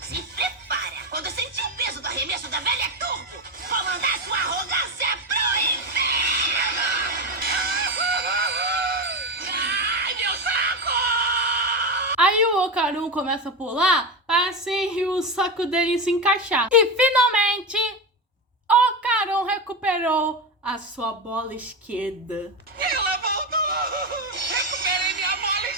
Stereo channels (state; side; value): normal; both; correlation 0.16